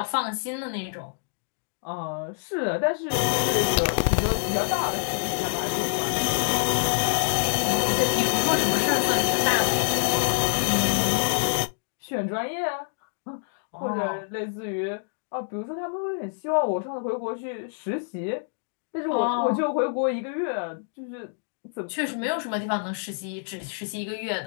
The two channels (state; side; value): silent; right; digital silence